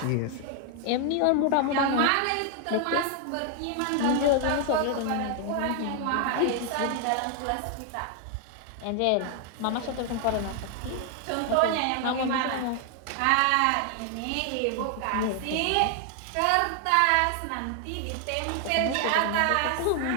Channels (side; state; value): both; different; correlation 0.00